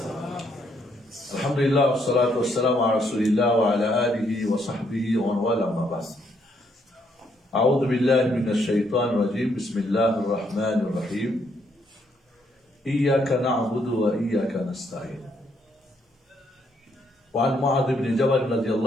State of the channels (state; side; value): normal; both; correlation 0.73